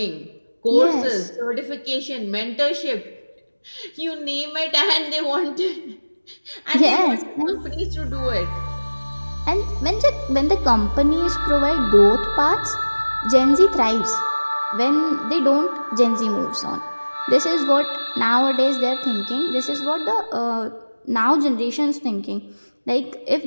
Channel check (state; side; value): inverted; both; correlation -1.00